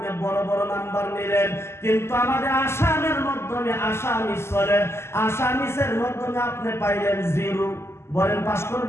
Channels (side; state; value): right; late; 0.12 ms